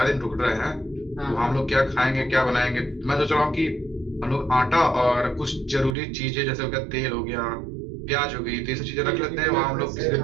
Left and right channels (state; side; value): drops out; left; at 6.0 s